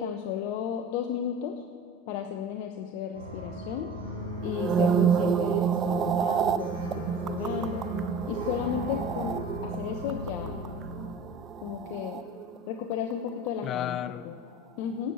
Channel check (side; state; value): both; normal; correlation 0.36